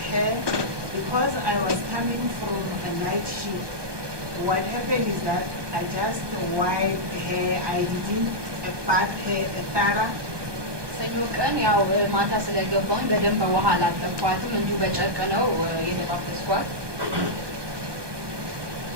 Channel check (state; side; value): late; left; 1.2 ms